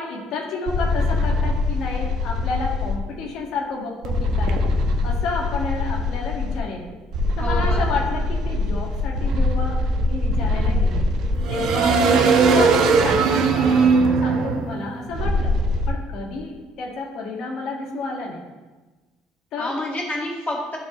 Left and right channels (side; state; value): both; normal; correlation 0.63